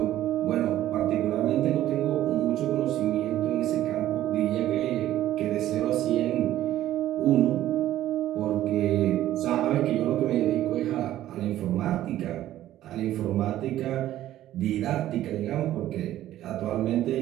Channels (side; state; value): left; quieter; 13.4 dB